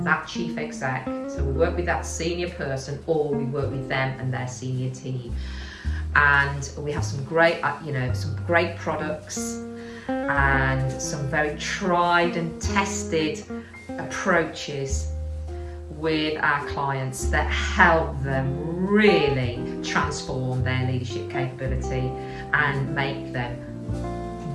that chief exec. So we work with that senior person, or we work with them and their senior team. And we have some great products and some very tried and tested approaches with our clients that help them really transform their leadership capability and make them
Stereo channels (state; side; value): identical; both; correlation 1.00